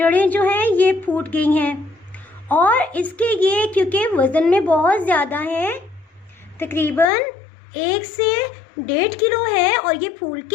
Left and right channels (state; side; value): drops out; right; at 7.1 s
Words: जो हैं ये फूट गई हैं और इसके ये क्योंकि वज़न में बहुत ज़्यादा है, तकरीबन 1 से 1.5 किलो है और ये फूल